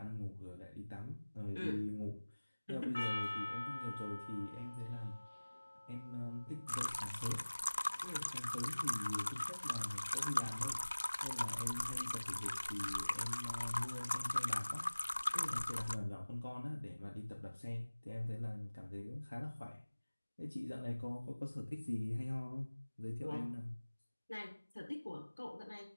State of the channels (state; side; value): inverted; both; correlation -1.00